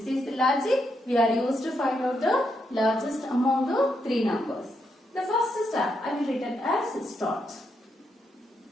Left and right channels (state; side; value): normal; both; correlation 0.80